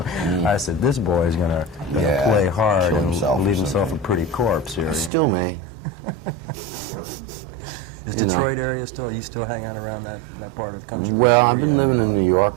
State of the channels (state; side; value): drops out; left; at 5.1 s